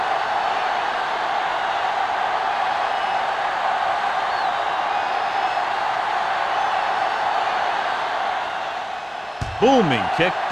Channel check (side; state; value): both; identical; correlation 1.00